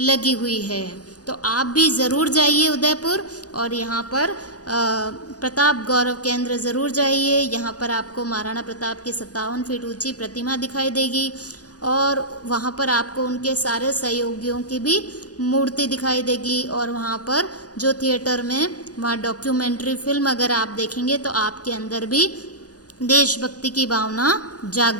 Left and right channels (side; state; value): right; late; 0.68 ms